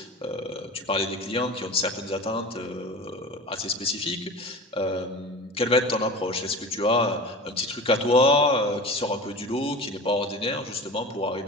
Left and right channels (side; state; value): both; normal; correlation 0.34